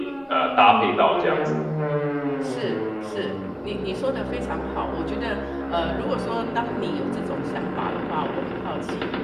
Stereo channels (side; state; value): both; identical; correlation 1.00